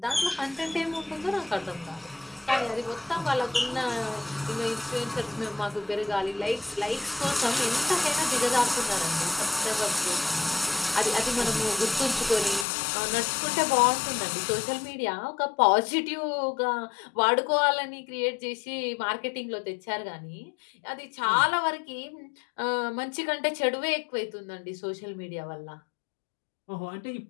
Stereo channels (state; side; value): drops out; right; at 12.7 s